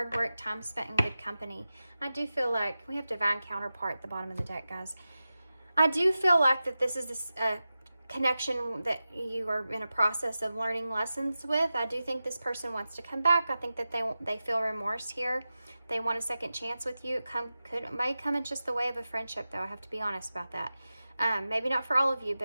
work, time spent in good company. I do feel like we have divine counterpart at the bottom of the deck, guys. I do feel like that this is connection that you are in a process of learning lessons with. I do think this person wants to come back. I think that they feel remorse here. They want a second chance with you. It may come in just the way of a friendship, though. I have to be honest about that. Maybe not for all of you,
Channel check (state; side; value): inverted; both; correlation -0.94